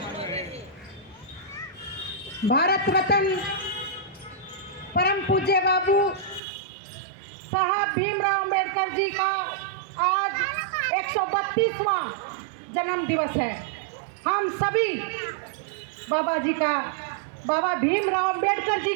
भारत रत्न परम पूज्य बाबू साहब भीमराव अंबेडकर जी का आज 132वां जन्म दिवस है। हम सभी बाबा जी का, बाबा भीमराव अंबेडकर जी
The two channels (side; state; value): left; drops out; at 6.4 s